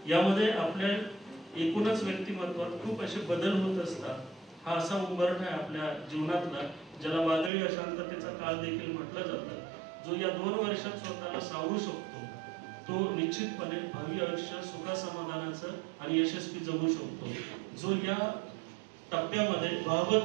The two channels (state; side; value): drops out; left; at 7.5 s